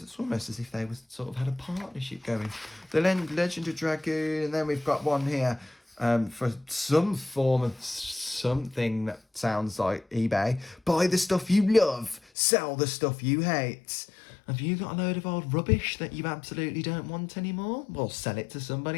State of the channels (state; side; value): drops out; right; at 12.2 s